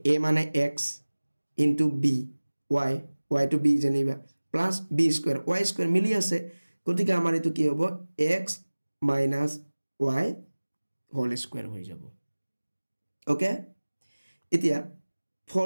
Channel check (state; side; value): inverted; both; correlation -1.00